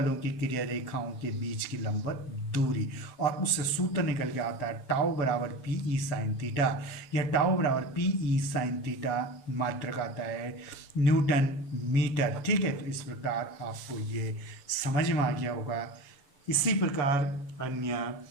की क्रिया रेखाओं के बीच की लंबवत दूरी, और उससे सूत्र निकल के आता है टाउ बराबर पी ई साइन थीटा। यह टाउ बराबर पी ई साइन थीटा मात्रक आता है न्यूटन मीटर। ठीक है, तो इस प्रकार आपको ये समझ में आ गया होगा। इसी प्रकार अन्य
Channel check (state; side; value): late; right; 7.6 ms